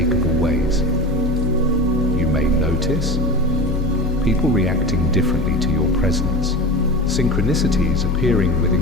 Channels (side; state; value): both; normal; correlation 0.30